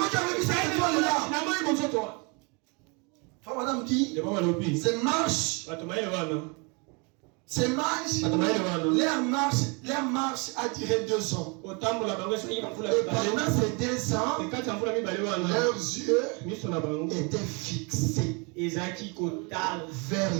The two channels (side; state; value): left; quieter; 31.5 dB